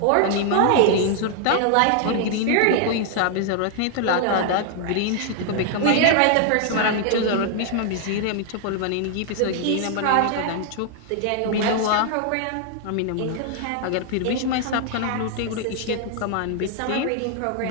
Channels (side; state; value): both; different; correlation 0.00